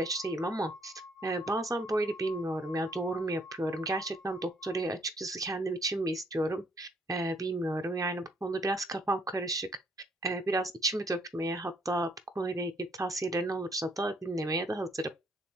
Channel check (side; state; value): both; normal; correlation 0.67